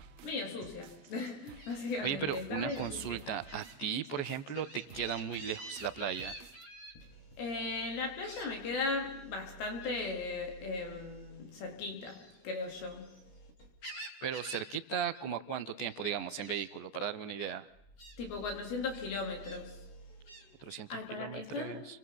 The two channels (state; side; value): late; right; 14 ms